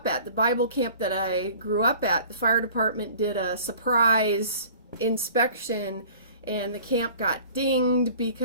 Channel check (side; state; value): both; inverted; correlation -0.47